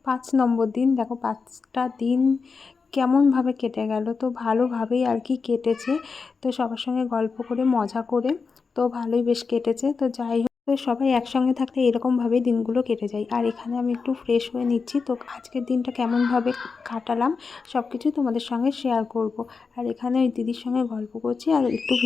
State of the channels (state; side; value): quieter; right; 4.9 dB